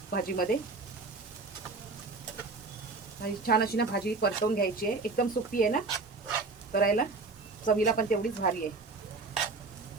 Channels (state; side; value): quieter; left; 3.8 dB